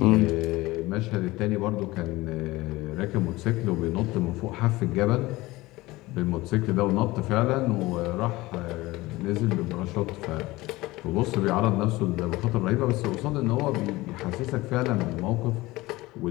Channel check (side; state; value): right; quieter; 19.8 dB